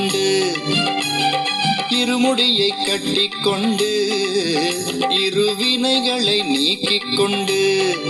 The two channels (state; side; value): identical; both; correlation 1.00